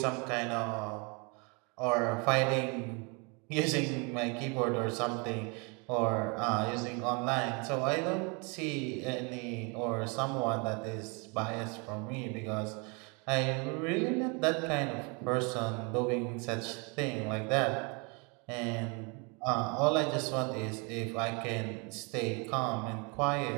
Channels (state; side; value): quieter; left; 32.2 dB